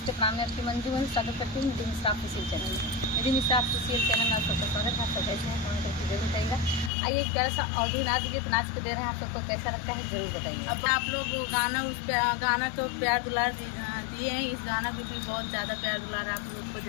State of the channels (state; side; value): drops out; right; at 6.9 s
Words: प्रणाम, मैं आपकी मंजू वही स्वागत करती हूँ निधि मिश्रा ऑफिशियल चैनल में। निधि मिश्रा ऑफिशियल चैनल में आप सबका स्वागत है। आप सब कैसे हैं कमेंट करके जरूर बताइएगा। आइए एक प्यारा सा ऑडियो नाच गीत नाच के दे रहे हैं, आप सबको कैसा लगता है जरूर बताइए। अब आप लोग गाना तो प्यार दुलार दिए हैं, इस गाना को भी बहुत ज़्यादा प्यार दुलार आप लोग को